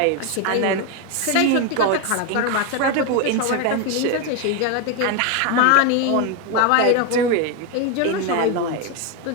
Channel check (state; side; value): different; both; correlation 0.02